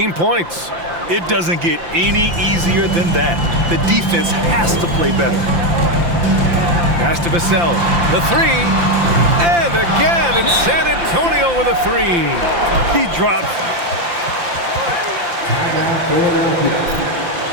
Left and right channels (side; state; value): left; late; 5.8 ms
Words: points. It doesn't get any easier than that. The defense has to play better. Pass to Vassell. The three. And again, it's San Antonio with a three. He dropped.